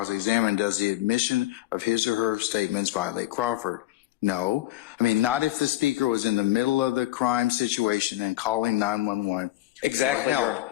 does the admission of his or her statements violate Crawford? No. Not if the speaker was in the middle of the crime situation and calling 911 exactly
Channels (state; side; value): quieter; right; 15.7 dB